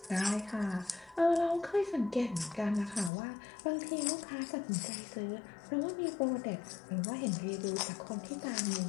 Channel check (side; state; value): right; drops out; at 3.1 s